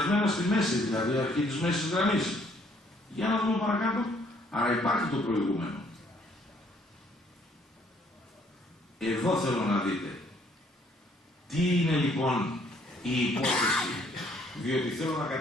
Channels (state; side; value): normal; both; correlation 0.64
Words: στη μέση, δηλαδή αρχή της μέσης γραμμής. Για να δούμε παρακάτω. Άρα υπάρχει το προηγούμενο. Εδώ θέλω να δείτε. Τι είναι λοιπόν η υπόθεση? Διότι θέλω να